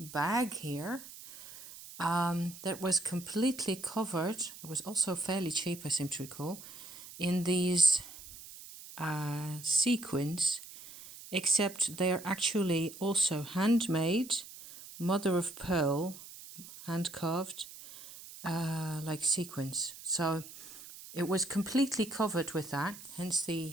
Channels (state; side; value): noise; right; hiss, 15 dB below the sound